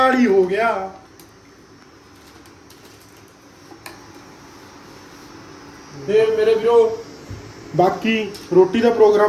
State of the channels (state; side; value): identical; both; correlation 1.00